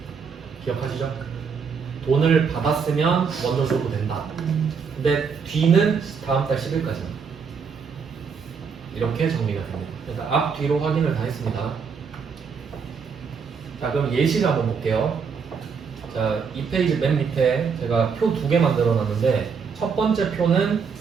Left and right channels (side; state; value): left; quieter; 5.9 dB